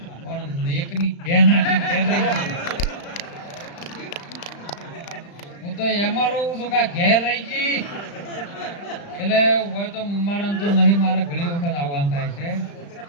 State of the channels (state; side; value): late; right; 35 ms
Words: પણ એકની બેન હું તો એમાં રહું છું કે ઘેર રહી ગઈ. એટલે હોય તો મારા તો નહીં, મારે ઘણી વખત આવવાનું થાય છે